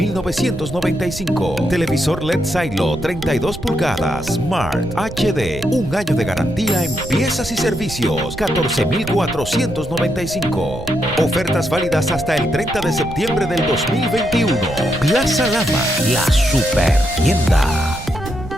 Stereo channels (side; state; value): right; noise; rumble, 11 dB below the sound